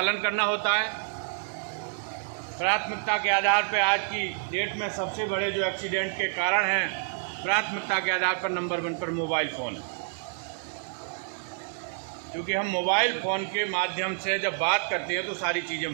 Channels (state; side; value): silent; left; digital silence